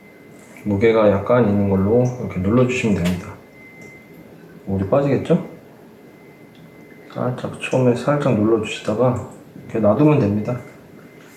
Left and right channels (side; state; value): both; identical; correlation 1.00